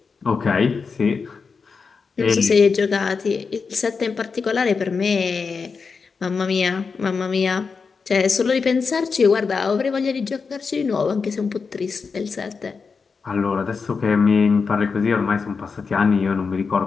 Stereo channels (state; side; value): quieter; right; 5.1 dB